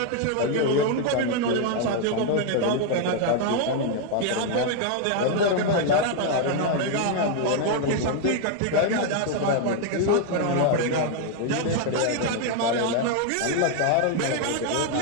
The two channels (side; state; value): both; different; correlation 0.00